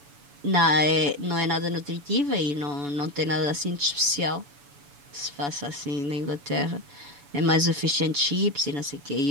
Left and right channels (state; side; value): late; left; 7.0 ms